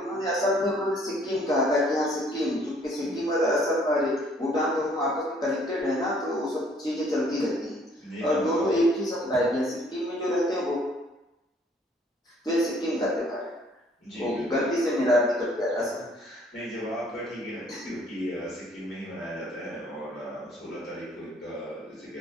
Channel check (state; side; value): normal; both; correlation 0.61